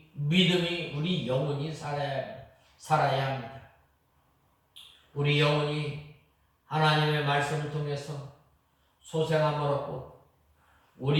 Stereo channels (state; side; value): identical; both; correlation 1.00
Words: 믿음이, 우리 영혼이 살아야 합니다. 우리 영혼이 하나님의 말씀을 통해서 소생함을 얻고,